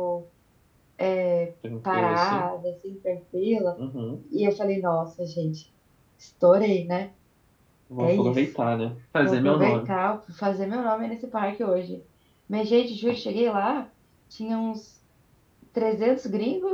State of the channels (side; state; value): both; identical; correlation 1.00